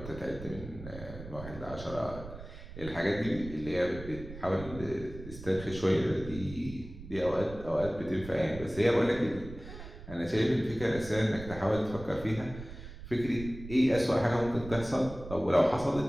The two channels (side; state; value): right; noise; rumble, 13 dB below the sound